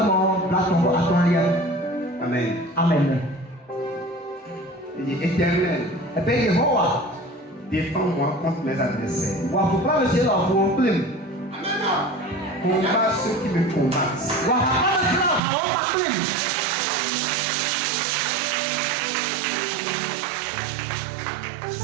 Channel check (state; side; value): drops out; left; at 15.4 s